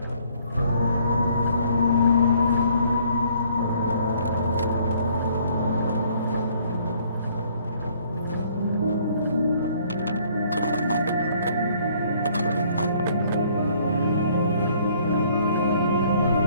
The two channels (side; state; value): both; inverted; correlation -0.61